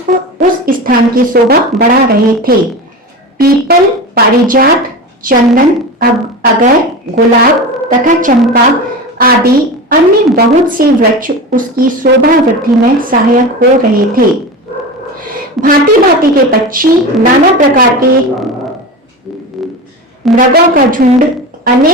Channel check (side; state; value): both; normal; correlation 0.26